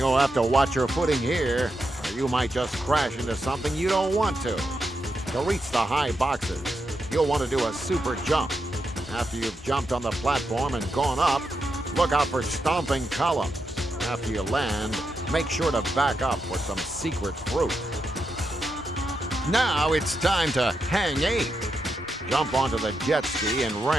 have to watch your footing here, or you might just crash into something you don't want to. To reach the high boxes, you'll want to do a super jump. After you've jumped on the platform and gone up, look out for stomping columns. After you land, make sure to back up for some secret fruit. Now it's time to hang 8. Jump onto the jet ski and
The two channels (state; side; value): normal; both; correlation 0.85